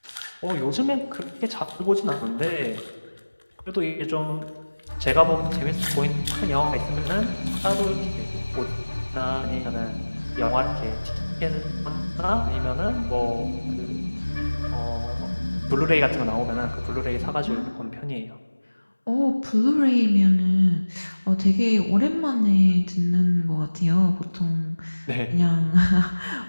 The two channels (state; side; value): inverted; both; correlation -1.00